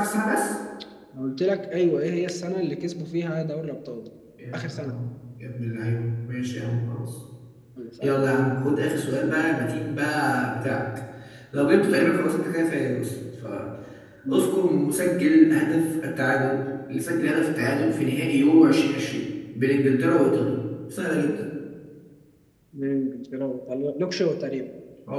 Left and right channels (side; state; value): both; identical; correlation 1.00